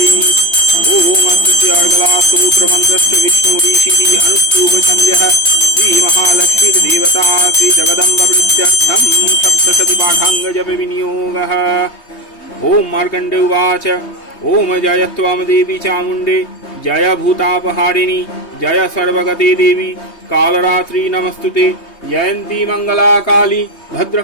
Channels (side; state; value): right; late; 3.2 ms